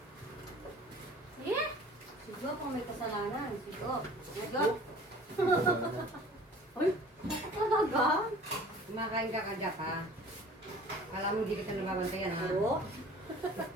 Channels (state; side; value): normal; both; correlation 0.46